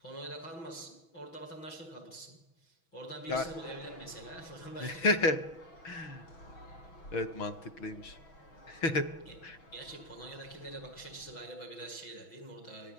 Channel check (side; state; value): right; late; 6.1 ms